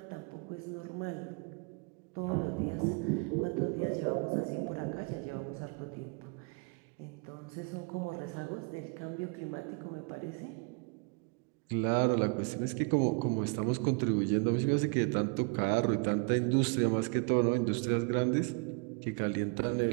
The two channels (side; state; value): left; quieter; 33.7 dB